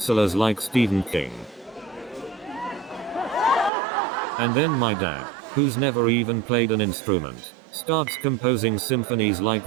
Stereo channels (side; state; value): left; drops out; at 3.7 s